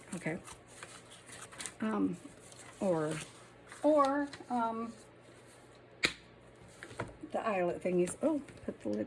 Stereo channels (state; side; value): identical; both; correlation 1.00